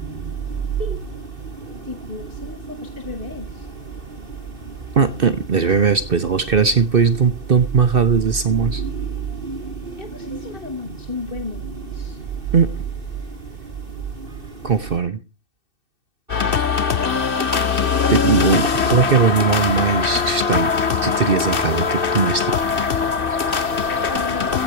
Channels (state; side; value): late; left; 2.6 ms